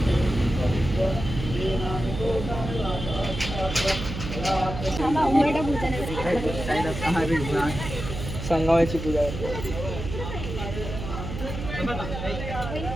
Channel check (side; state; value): right; noise; hum, 7 dB below the sound